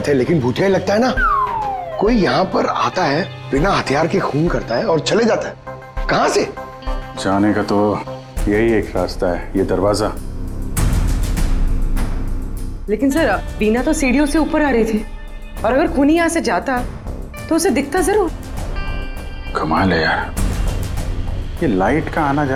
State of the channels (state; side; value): identical; both; correlation 1.00